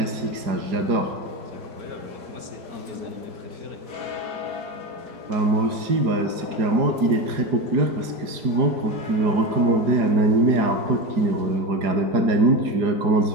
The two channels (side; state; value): left; late; 4.9 ms